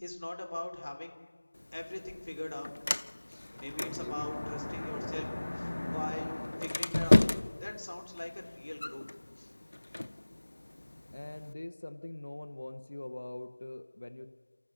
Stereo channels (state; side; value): inverted; both; correlation -1.00